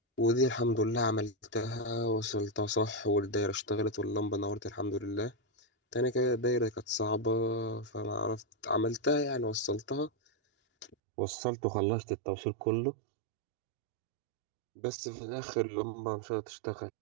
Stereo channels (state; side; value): drops out; left; at 11.0 s